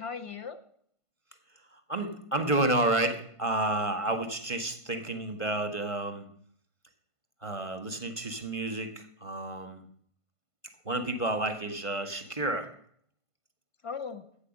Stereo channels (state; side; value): late; right; 1.5 ms